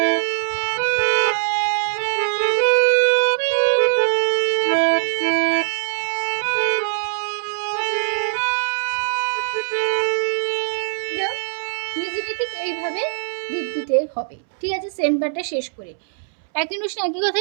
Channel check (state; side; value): silent; left; 65 dB below the other